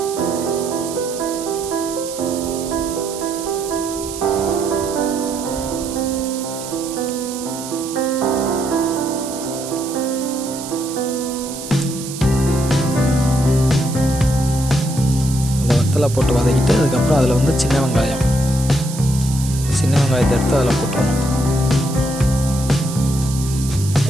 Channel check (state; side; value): noise; right; hiss, 11 dB below the sound